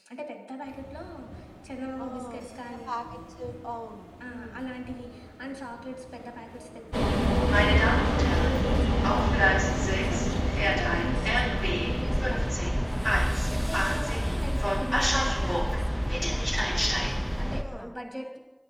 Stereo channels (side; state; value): both; identical; correlation 1.00